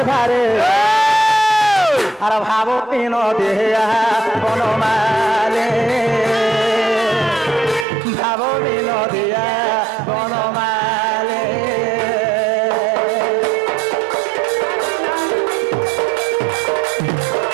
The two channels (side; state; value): left; drops out; at 7.9 s